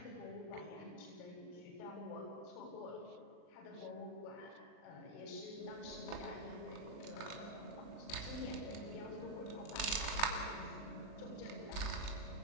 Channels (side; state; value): right; late; 39 ms